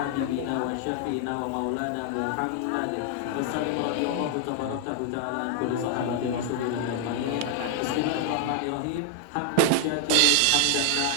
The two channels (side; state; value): both; different; correlation 0.00